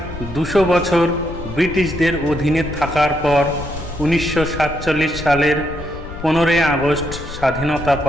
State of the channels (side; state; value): left; noise; rumble, 12 dB below the sound